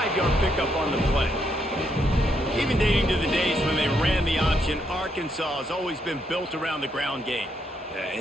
pickup on the play. Even dating to the days when they ran the option, Arkansas has always been built around the ground game. Yeah,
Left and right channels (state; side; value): normal; both; correlation 0.76